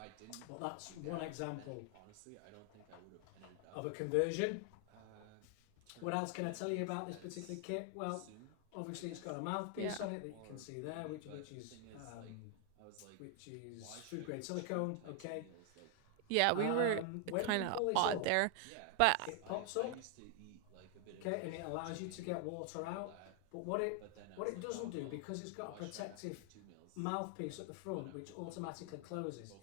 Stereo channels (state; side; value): different; both; correlation 0.00